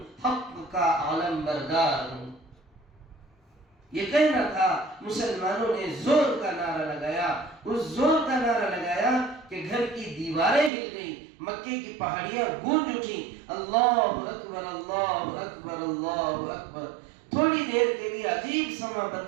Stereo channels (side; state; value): left; drops out; at 10.7 s